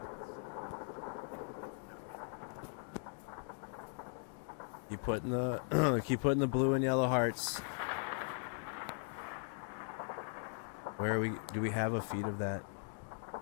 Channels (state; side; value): silent; right; 52 dB below the other